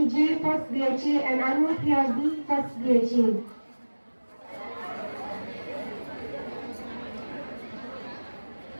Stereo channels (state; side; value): inverted; both; correlation -1.00